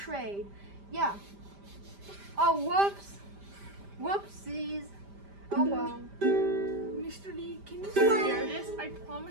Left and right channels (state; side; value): late; left; 5.0 ms